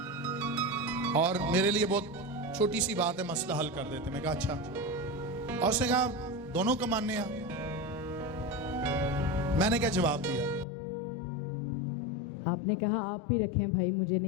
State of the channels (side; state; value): right; drops out; at 10.7 s